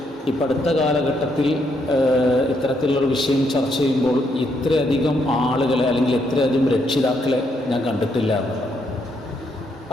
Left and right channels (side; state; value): both; normal; correlation 0.75